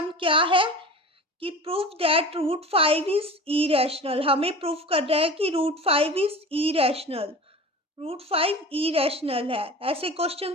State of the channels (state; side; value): normal; both; correlation 0.36